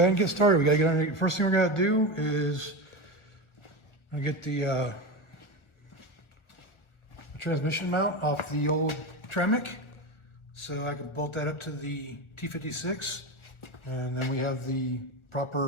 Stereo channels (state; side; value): late; right; 1.4 ms